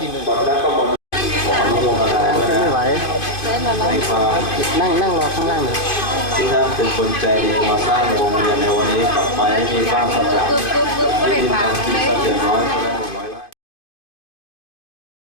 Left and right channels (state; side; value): late; right; 2.5 ms